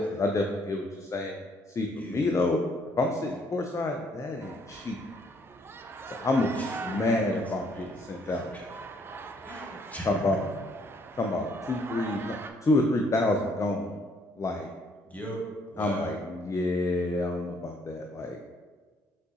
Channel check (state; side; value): normal; both; correlation 0.67